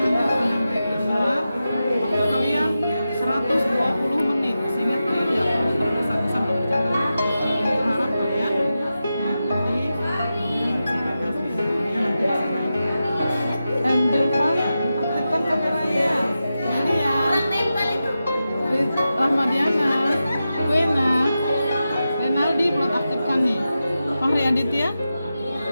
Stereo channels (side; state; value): both; inverted; correlation -0.91